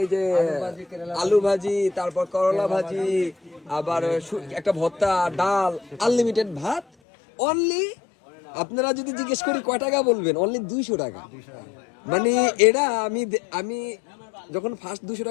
যে আলু ভাজি, তারপর করলা ভাজি, আবার একটা ভর্তা, ডাল, আনলিমিটেড ভাত। অনলি আপনারা যদি জিজ্ঞেস করি কয় টাকা বলবেন, অনলি 200 টাকা। মানে এটা আমি যখন ফার্স্ট 200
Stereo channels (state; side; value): drops out; right; at 6.9 s